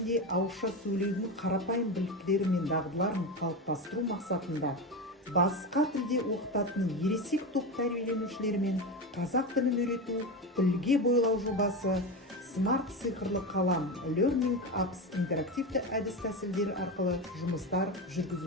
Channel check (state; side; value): normal; both; correlation 0.20